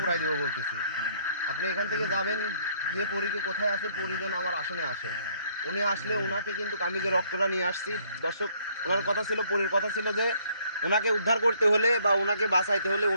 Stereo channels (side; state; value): both; inverted; correlation -0.65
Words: দেবো বলতেছি। আপনি এখান থেকে যাবেন, গিয়ে পরীকে কোথায় আছে, পরী যেন আমার আসনে আসে। উনি আসলে ওনাকে কিন্তু আমি যে রক্তটা নিয়ে আসছি, দর্শক ওনার কথা ছিল, পরীর কথা ছিল যে ওনাকে উদ্ধার করতে হলে বা ওনাকে বাঁচাইতে হলে,